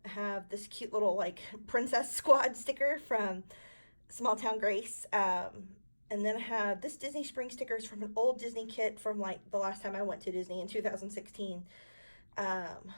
I have this cute little like Princess Squad sticker from Small Town Grace. And then I have this Disney Springs stickers from an old Disney kit from like the last time I went to Disney in 2016. And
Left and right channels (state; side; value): inverted; both; correlation -1.00